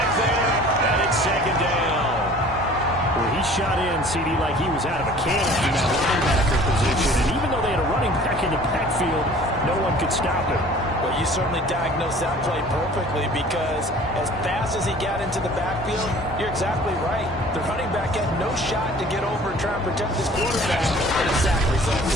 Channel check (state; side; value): normal; both; correlation 0.48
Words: there, and it's 2nd down. Well, he shot in ran CD like he was out of a cannon in that linebacker position. And even though they had a running back in the backfield, no one could stop him. Well, you certainly diagnosed that play perfectly because as fast as he got into the backfield, you're exactly right. The running back had no shot to get over and try and protect his quarterback, and a sack